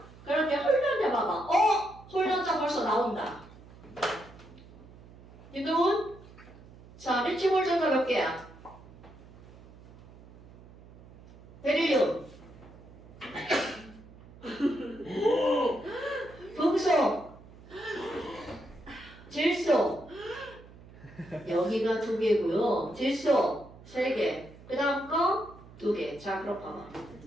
그런데 홀전자 봐봐. 홀전자 벌써 나온다. 윤동훈? 자, 리튬 홀전자 몇 개야? 베릴륨. 금속. 질소. 여기가 2개고요. 질소 3개. 그 다음 거 2개. 자, 그럼 봐봐.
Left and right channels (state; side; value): noise; right; hum, 20 dB below the sound